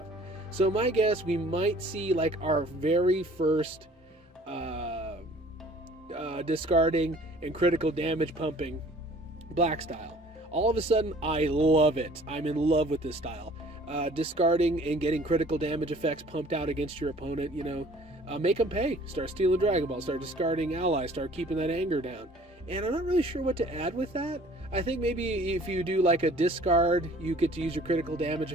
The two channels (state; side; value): normal; both; correlation 0.52